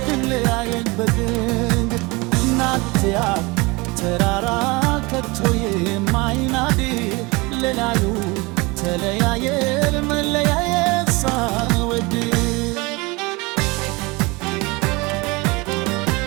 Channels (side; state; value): left; quieter; 25.2 dB